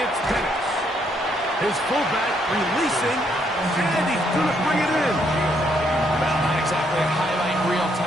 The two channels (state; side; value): normal; both; correlation 0.72